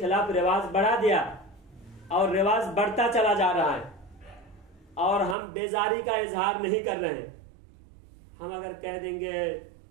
रिवाज बढ़ा दिया, और रिवाज बढ़ता चला जा रहा है और हम बेजारी का इजहार नहीं कर रहे हैं। हम अगर कह देंगे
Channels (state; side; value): drops out; left; at 5.4 s